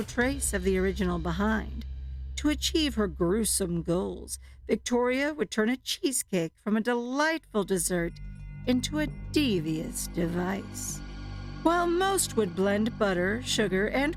trace of the original behind. To achieve her gruesome goals, Victoria would turn a cheesecake from a delightful dessert into a devious device. While most would blend butter, sugar, and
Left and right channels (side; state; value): both; identical; correlation 1.00